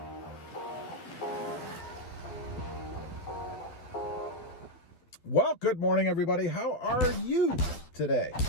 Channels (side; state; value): right; late; 12 ms